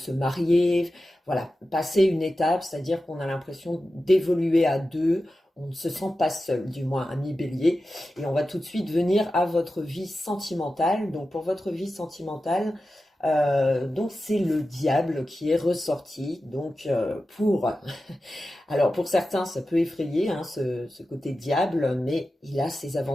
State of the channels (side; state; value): both; normal; correlation 0.93